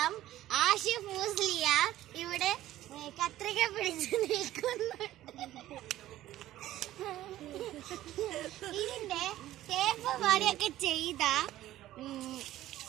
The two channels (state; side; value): quieter; left; 14.3 dB